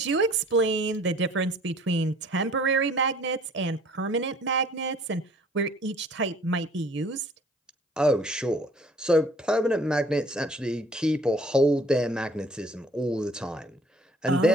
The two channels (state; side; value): normal; both; correlation 0.54